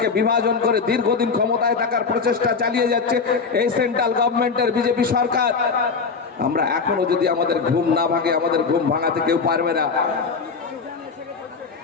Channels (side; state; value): right; quieter; 5.0 dB